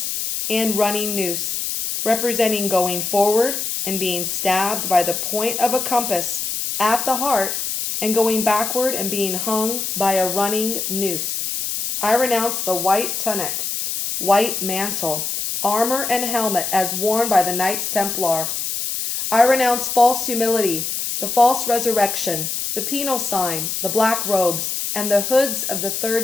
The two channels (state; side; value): noise; left; hiss, 3 dB below the sound